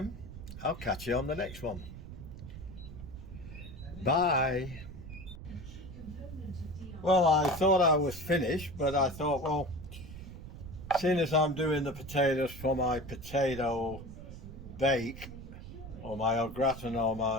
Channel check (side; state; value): right; noise; rumble, 12 dB below the sound